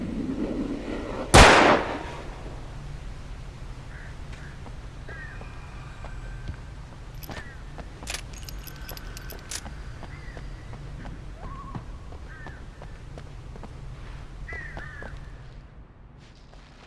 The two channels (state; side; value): identical; both; correlation 1.00